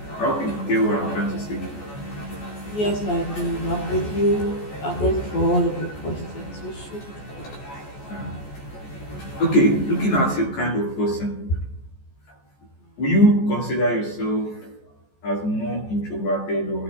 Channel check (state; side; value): late; right; 14 ms